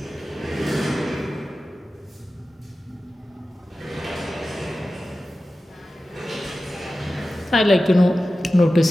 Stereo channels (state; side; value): normal; both; correlation 0.94